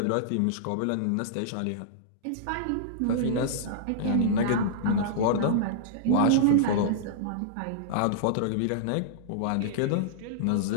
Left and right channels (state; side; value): different; both; correlation -0.02